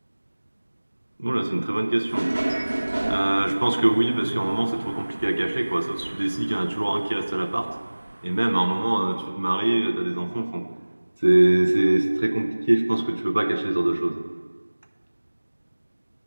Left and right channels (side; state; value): both; inverted; correlation -1.00